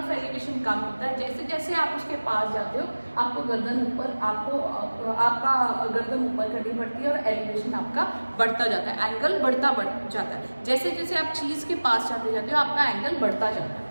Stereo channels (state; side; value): inverted; both; correlation -1.00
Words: ऑफ एलिवेशन कम होता है. जैसे जैसे आप उसके पास जाते हो आपको गर्दन ऊपर, आपका गर्दन ऊपर करनी पड़ती है और एलिवेशन आपका बढ़ता जाता है, एंगल बढ़ता जाता है. जैसे जैसे आप चीज के पास जाते जाते हो आपका एंगल बढ़ता जाता है.